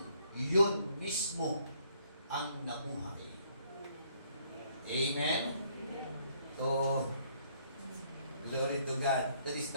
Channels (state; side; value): inverted; both; correlation -0.67